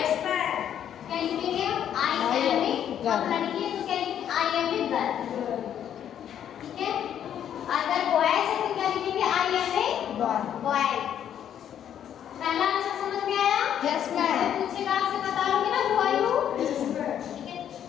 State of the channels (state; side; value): quieter; right; 9.7 dB